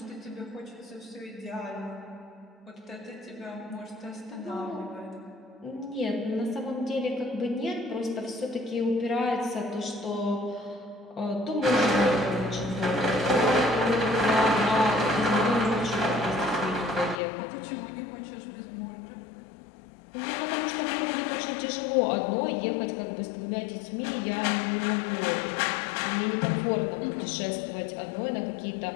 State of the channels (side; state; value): right; drops out; at 17.2 s